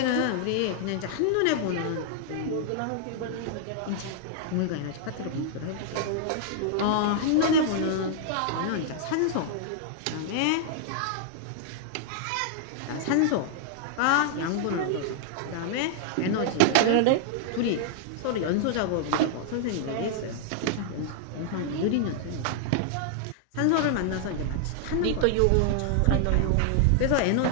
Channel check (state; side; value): different; both; correlation -0.01